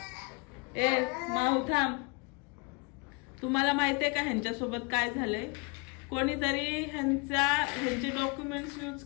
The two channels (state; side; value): quieter; right; 29.7 dB